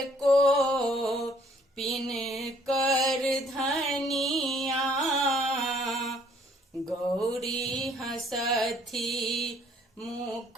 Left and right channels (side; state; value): both; normal; correlation 0.61